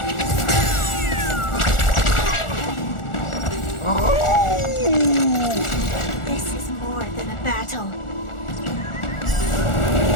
This is more than a battle.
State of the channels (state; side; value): late; right; 1.4 ms